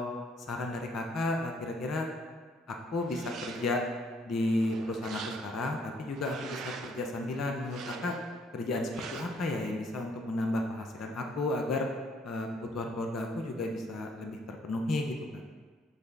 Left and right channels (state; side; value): normal; both; correlation 0.65